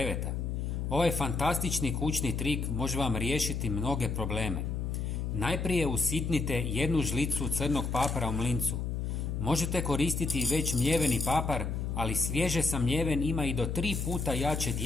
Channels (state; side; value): noise; left; hum, 2 dB below the sound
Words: Ovaj fantastični kućni trik može vam riješiti mnoge probleme. Najprije usitnite 1 žlicu crnog papara u mlincu. Možete koristiti već mljeveni papar, ali svježe samljeven ima i do 3 puta jače